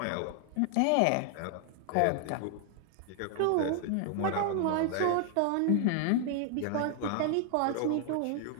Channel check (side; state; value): both; different; correlation 0.00